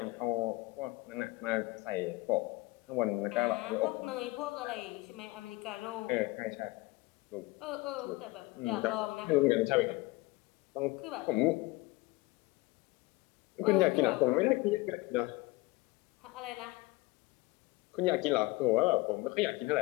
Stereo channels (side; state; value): right; quieter; 21.2 dB